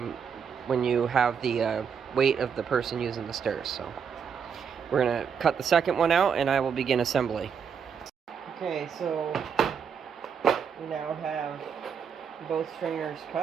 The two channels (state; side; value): quieter; left; 6.9 dB